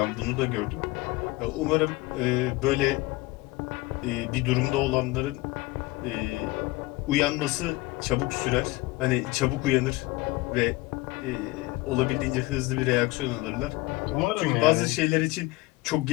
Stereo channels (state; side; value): quieter; right; 20.8 dB